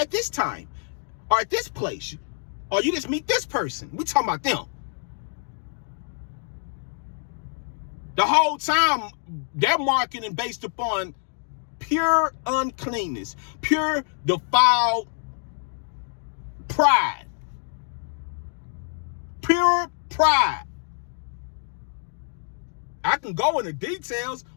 this time, or at this place, or you just meet this person. We talking about them. The whole time they're marketing based upon pure uncleanness, pure defiled pride. Pure pride. I can go into details,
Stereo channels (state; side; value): silent; right; 61 dB below the other